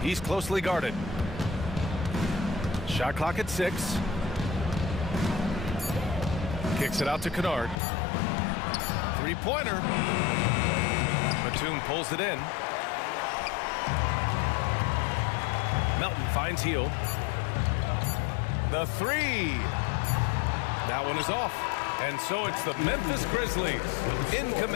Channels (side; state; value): right; drops out; at 7.8 s